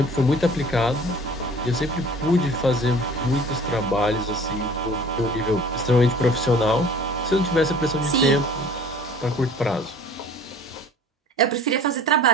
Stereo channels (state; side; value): normal; both; correlation 0.47